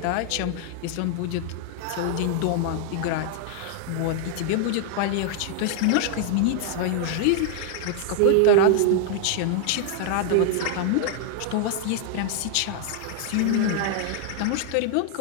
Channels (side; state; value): both; different; correlation 0.00